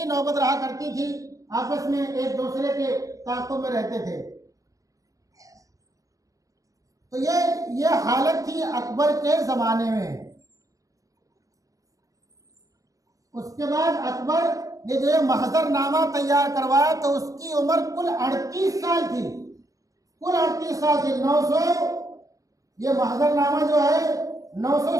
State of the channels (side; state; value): left; late; 0.16 ms